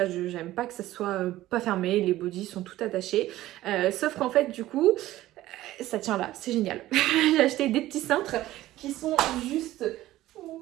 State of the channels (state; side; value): quieter; left; 15.4 dB